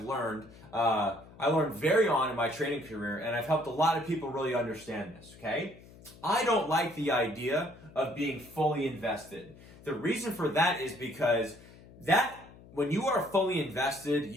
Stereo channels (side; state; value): left; noise; hum, 21 dB below the sound